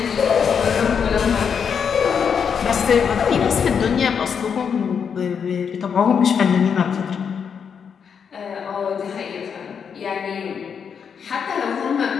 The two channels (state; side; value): quieter; right; 6.9 dB